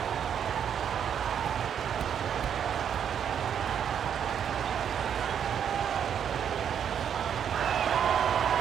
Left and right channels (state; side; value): quieter; left; 8.4 dB